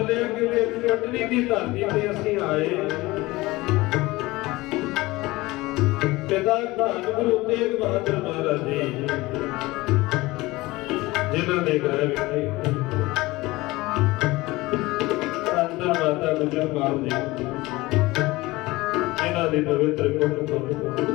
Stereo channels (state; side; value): quieter; right; 20.4 dB